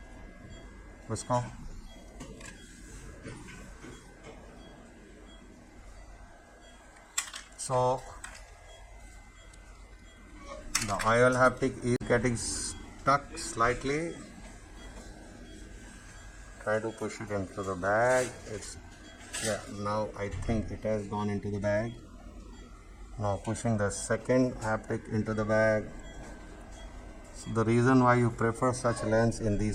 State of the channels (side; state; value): both; identical; correlation 1.00